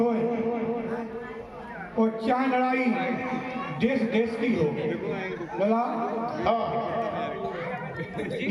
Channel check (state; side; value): identical; both; correlation 1.00